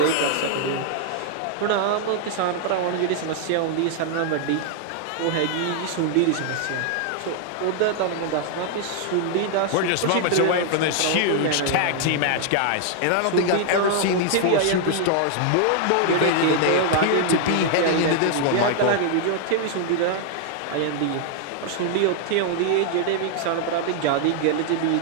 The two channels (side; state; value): both; different; correlation 0.00